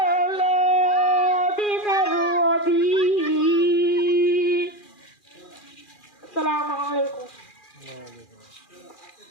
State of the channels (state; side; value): late; right; 2.4 ms